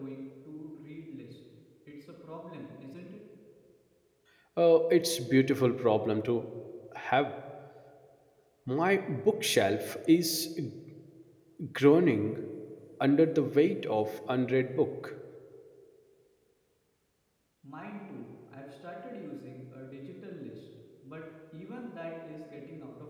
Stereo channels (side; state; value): both; identical; correlation 1.00